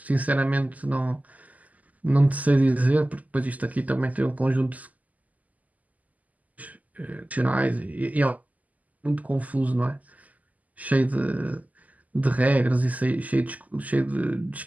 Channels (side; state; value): left; late; 0.077 ms